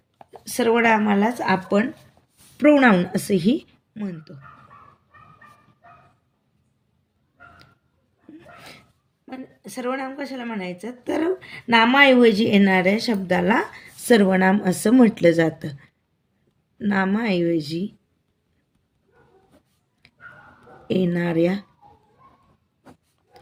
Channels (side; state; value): both; identical; correlation 1.00